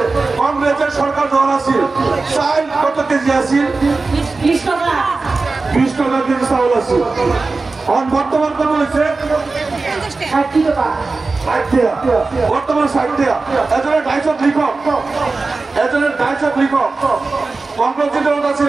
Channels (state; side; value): quieter; left; 3.8 dB